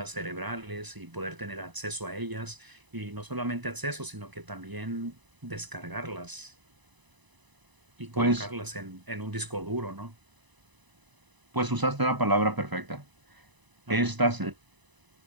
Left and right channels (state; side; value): late; left; 1.0 ms